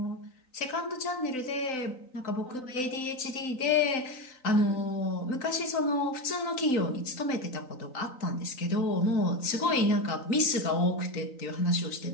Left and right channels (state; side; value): late; right; 3.9 ms